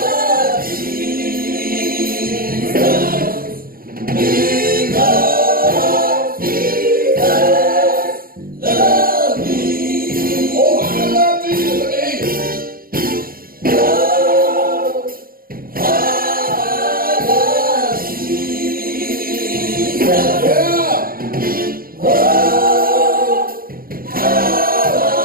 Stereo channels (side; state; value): left; late; 0.42 ms